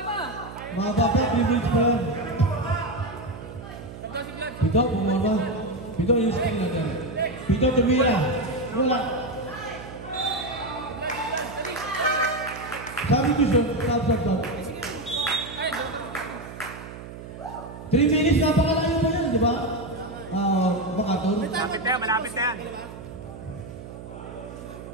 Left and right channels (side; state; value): right; noise; hum, 13 dB below the sound